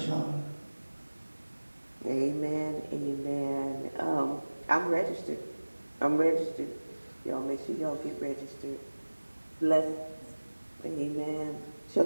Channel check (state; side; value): inverted; both; correlation -1.00